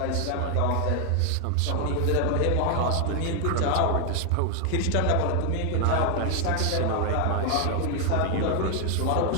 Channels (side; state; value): both; different; correlation 0.00